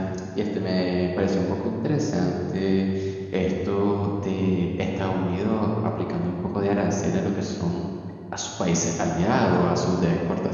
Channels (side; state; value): both; identical; correlation 1.00